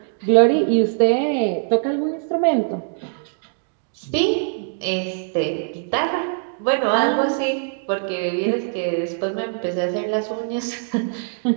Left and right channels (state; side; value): silent; left; digital silence